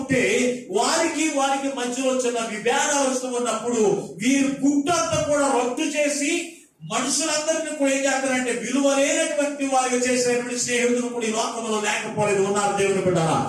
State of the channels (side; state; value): both; identical; correlation 1.00